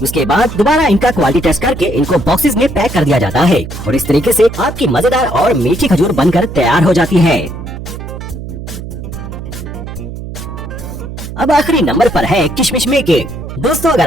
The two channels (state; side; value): noise; right; hum, 10 dB below the sound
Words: उसके बाद दोबारा इनका क्वालिटी टेस्ट करके इनको बॉक्सेस में पैक कर दिया जाता है और इस तरीके से आपकी मजेदार और मीठी खजूर बनकर तैयार हो जाती है। अब आखिरी नंबर पर है किशमिश मेकिंग। दोस्तों, अगर